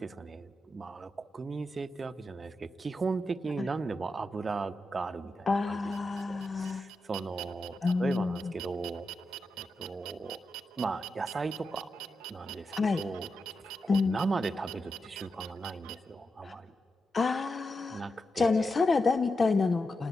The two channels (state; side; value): normal; both; correlation 0.88